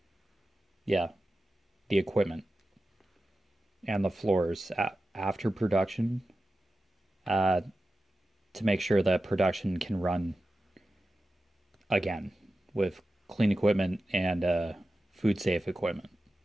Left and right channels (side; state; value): both; normal; correlation 0.93